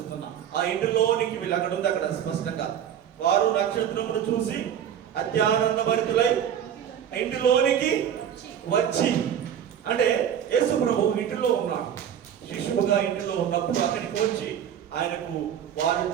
ఆ ఇంటిలోనికి వెళ్ళి అక్కడ ఉంది, అక్కడ స్పష్టంగా వారు నక్షత్రమును చూసి అత్యానంద భరితులై ఇంటిలోనికి వచ్చి, అంటే యేసు ప్రభు ఇంటిలో ఉన్నాడు. శిశువుగా ఇంటిలో ఉన్నప్పుడు అక్కడికి వచ్చి ఆయనకు వారు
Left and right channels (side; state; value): left; quieter; 9.3 dB